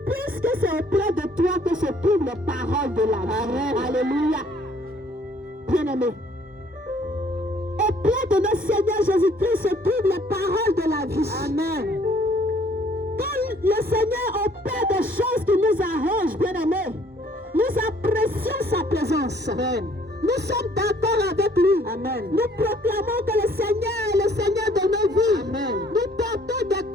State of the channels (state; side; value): normal; both; correlation 0.60